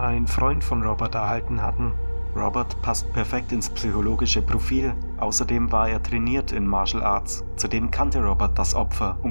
Freund von Robert erhalten hatten. Robert passt perfekt ins psychologische Profil, außerdem war er trainiert in Martial Arts. Zudem kannte Robert das Opfer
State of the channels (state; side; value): inverted; both; correlation -1.00